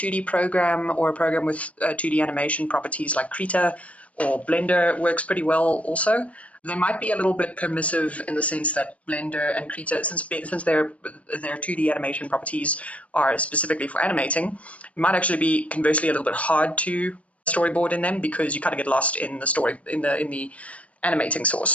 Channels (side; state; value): right; late; 0.066 ms